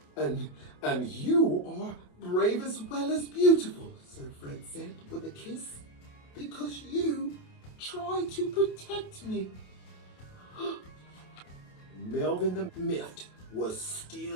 And you are brave as well as beautiful, Sir Fred said with a kiss, because you tried to protect me. Melvin the Miffed was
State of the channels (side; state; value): right; late; 28 ms